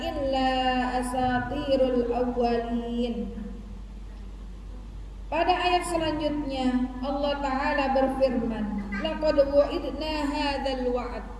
illa asatirul awwalin. Pada ayat selanjutnya Allah Ta'ala berfirman, laqad wu'idna hadzal wa'd.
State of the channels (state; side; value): identical; both; correlation 1.00